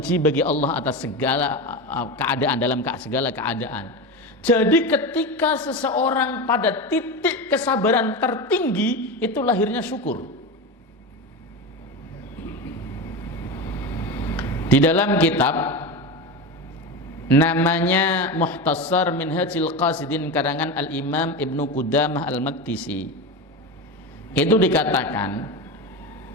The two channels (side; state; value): both; normal; correlation 0.21